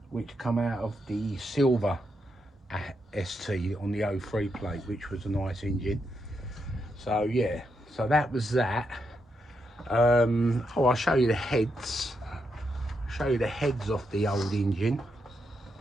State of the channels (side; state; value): both; normal; correlation 0.82